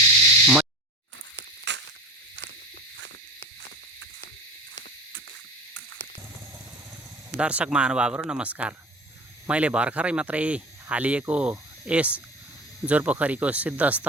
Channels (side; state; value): both; normal; correlation 0.33